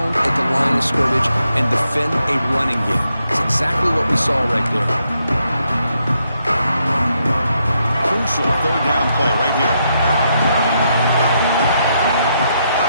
at the line of scrimmage and defend a running game. It's exactly what we saw right there. Crucial 3rd down play right here.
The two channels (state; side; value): inverted; both; correlation -0.79